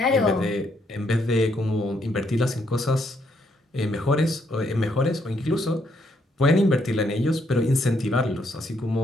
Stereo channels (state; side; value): normal; both; correlation 0.73